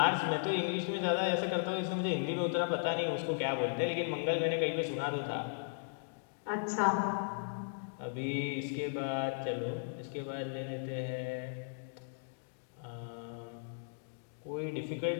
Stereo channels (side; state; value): right; silent; digital silence